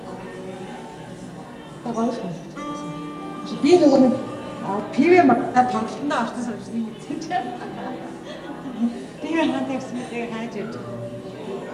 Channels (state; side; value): identical; both; correlation 1.00